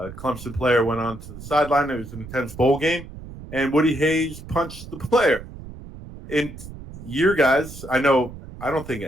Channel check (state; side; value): noise; right; rumble, 14 dB below the sound